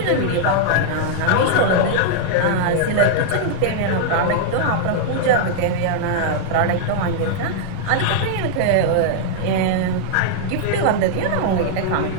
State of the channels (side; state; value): both; different; correlation -0.01